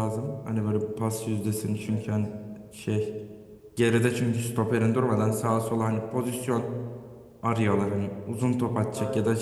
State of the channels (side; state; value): both; identical; correlation 1.00